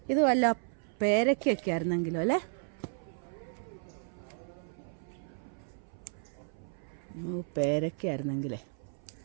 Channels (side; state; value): left; silent; 55 dB below the other